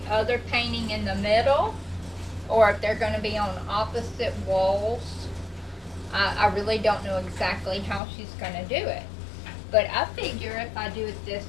other painting in the middle, or if they're going to be on opposite walls. I really don't know exactly how she's going to do it, but I figure if I do it this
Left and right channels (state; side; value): drops out; right; at 8.0 s